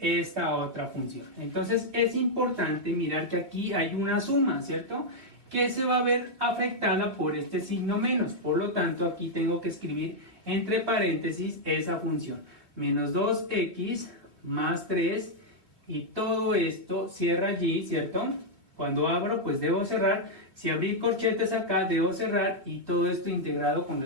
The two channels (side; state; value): left; late; 2.9 ms